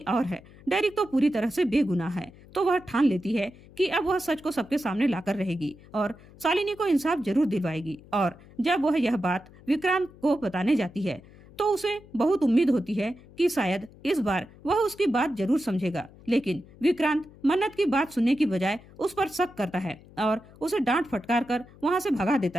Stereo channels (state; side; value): noise; left; hum, 22 dB below the sound